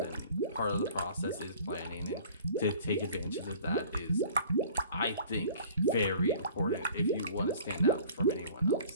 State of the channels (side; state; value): both; inverted; correlation -0.49